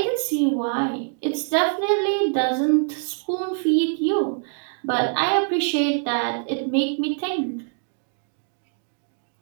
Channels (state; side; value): silent; left; 56 dB below the other